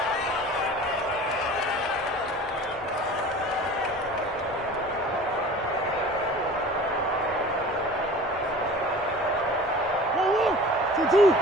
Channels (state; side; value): normal; both; correlation 0.41